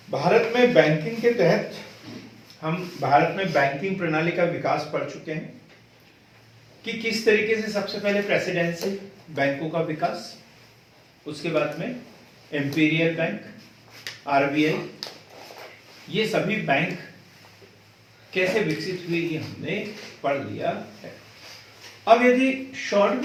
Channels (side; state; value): both; identical; correlation 1.00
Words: में बैंकिंग के तहत हम भारत में बैंकिंग प्रणाली का विकास पढ़ चुके हैं कि किस तरीके से सबसे पहले प्रेसिडेंसी बैंकों का विकास, उसके बाद में इंपीरियल बैंक, आरबीआई, ये सभी बैंक कैसे विकसित हुए ये हमने पढ़ लिया है। अब यदि शॉर्ट